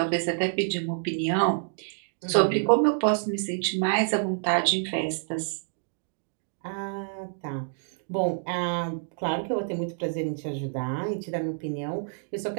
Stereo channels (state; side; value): silent; left; digital silence